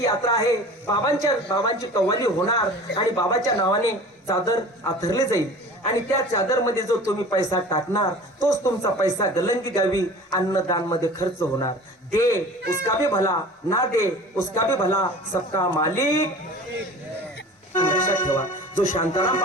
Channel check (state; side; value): normal; both; correlation 0.41